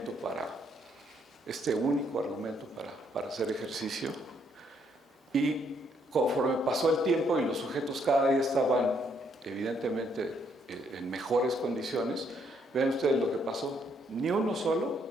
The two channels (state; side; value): normal; both; correlation 0.71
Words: este único argumento para hacer ejercicio. Y conforme pasó el tiempo y los sujetos cada día estaban evidentemente en mejores condiciones, vean ustedes lo que pasó, ni uno solo